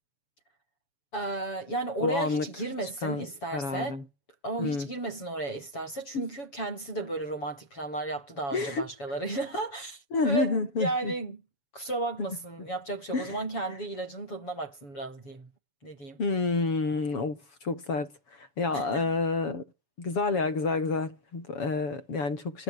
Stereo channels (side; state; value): right; late; 7.1 ms